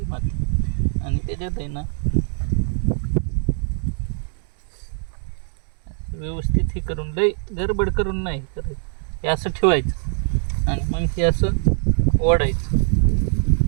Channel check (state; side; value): silent; left; digital silence